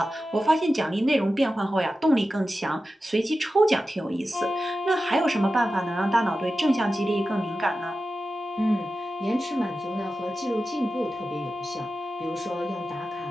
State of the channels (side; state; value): both; normal; correlation 0.93